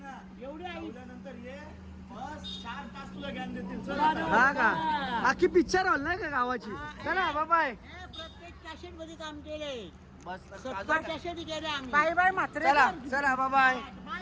एवढी आई. हा का? बाकी पिक्चर हॉल नाही का गावाची? चला बाय. प्रत्येक कॅसेट मध्ये काम केले. बस 70 कॅसेट केले आम्ही. चला बाय.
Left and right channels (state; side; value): identical; both; correlation 1.00